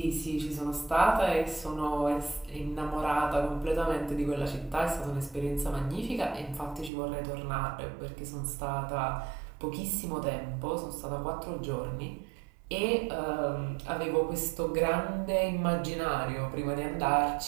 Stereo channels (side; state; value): left; drops out; at 6.9 s